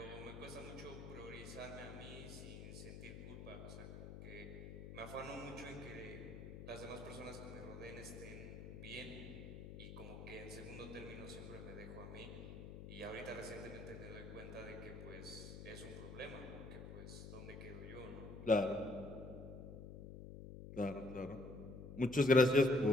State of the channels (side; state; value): left; noise; hum, 10 dB below the sound